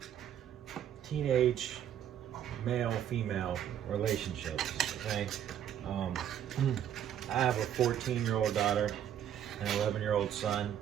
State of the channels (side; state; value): left; quieter; 10.1 dB